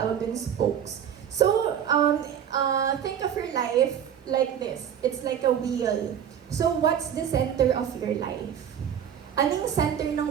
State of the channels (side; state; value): left; quieter; 9.1 dB